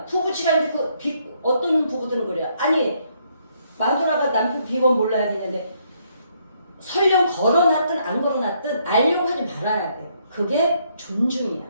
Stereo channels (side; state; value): both; inverted; correlation -0.72